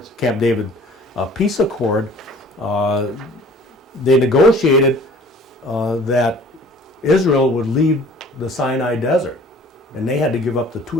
Camp David peace accord, they negotiated that Israel would leave the Sinai Desert, and they had to give up the two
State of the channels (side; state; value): both; normal; correlation 0.49